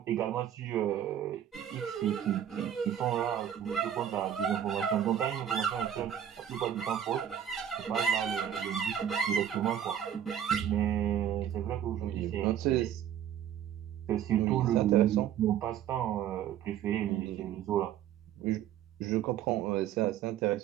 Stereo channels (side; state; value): left; quieter; 9.9 dB